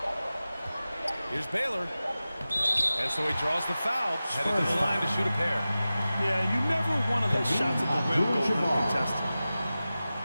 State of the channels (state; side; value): inverted; both; correlation -0.95